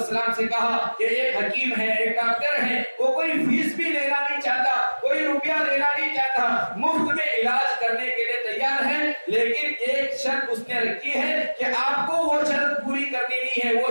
سے کہا کہ ایک حکیم ہے، ایک ڈاکٹر ہے، وہ کوئی فیس بھی لینا نہیں چاہتا، کوئی روپیہ لینا نہیں چاہتا، مفت میں علاج کرنے کے لیے تیار ہے، لیکن ایک شرط اس نے رکھی ہے کہ آپ کو وہ شرط پوری کرنی نہیں ہے،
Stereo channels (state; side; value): inverted; both; correlation -1.00